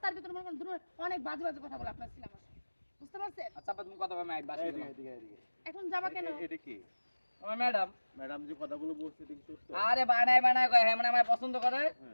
ভিতরে মনে করেন অনেক বাজে বাজে কথা বলে আপনার ছেলে আমার সাথে বুঝতে পারছেন আচ্ছা তুমি কথা বলবে আমি বাসে এদিকে এখন যাবা কেন এটা কি আমার ম্যাডাম ম্যাডাম যে কথাগুলো বলছে এটা কি সত্য আরে বানায় কয় হ্যাঁ মানে আমার পছন্দ করে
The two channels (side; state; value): both; inverted; correlation -1.00